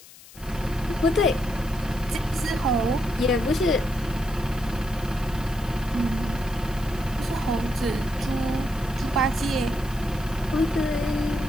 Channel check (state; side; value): noise; left; hiss, 20 dB below the sound